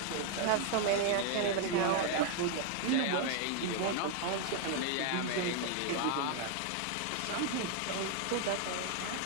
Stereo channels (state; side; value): different; both; correlation 0.00